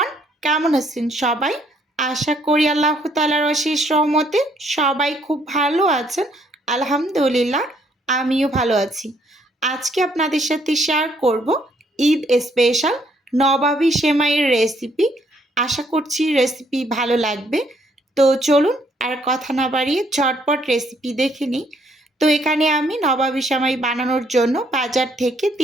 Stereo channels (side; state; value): both; normal; correlation 0.68